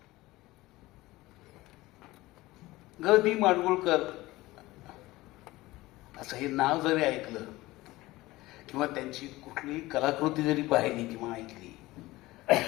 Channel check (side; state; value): right; quieter; 18.9 dB